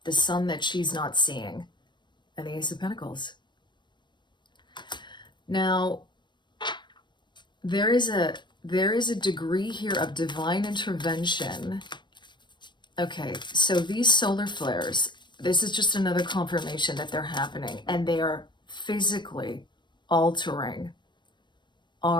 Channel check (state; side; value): late; right; 0.22 ms